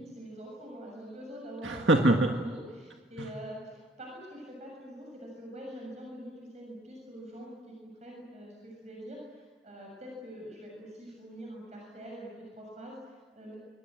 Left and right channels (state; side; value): normal; both; correlation 0.58